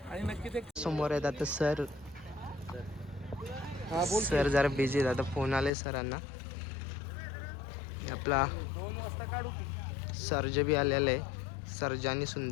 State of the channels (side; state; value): right; drops out; at 5.7 s